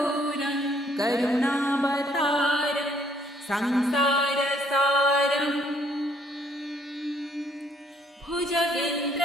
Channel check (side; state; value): both; normal; correlation 0.65